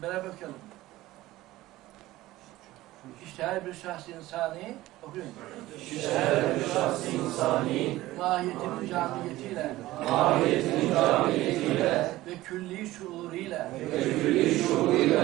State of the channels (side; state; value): left; quieter; 16.9 dB